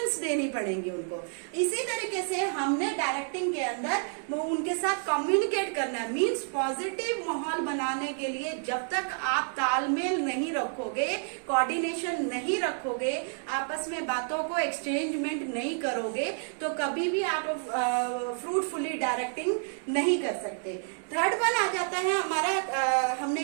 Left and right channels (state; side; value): silent; left; 58 dB below the other